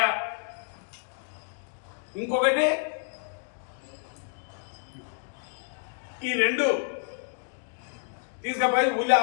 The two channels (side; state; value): right; silent; digital silence